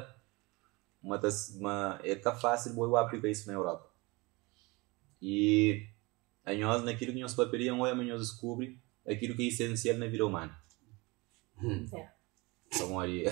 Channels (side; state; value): left; quieter; 24.9 dB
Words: é tá fácil eu aplicar isso na Europa. E a nós naquilo que nós paperiam ou nós descobre aquilo que é essencial na vida humana. Então ali,